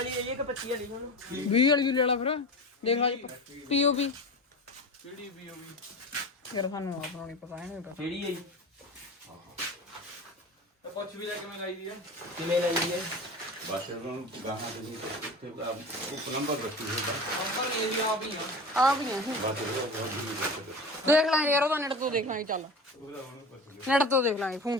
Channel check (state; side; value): normal; both; correlation 0.31